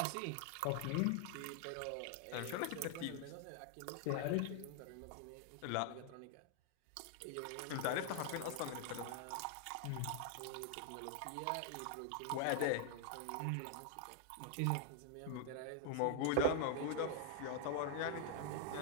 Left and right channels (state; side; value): different; both; correlation 0.00